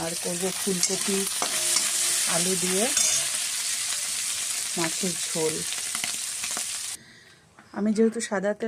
আর করবো ফুলকপি আলু দিয়ে মাছের ঝোল। আমি যেহেতু সাদা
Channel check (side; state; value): both; identical; correlation 1.00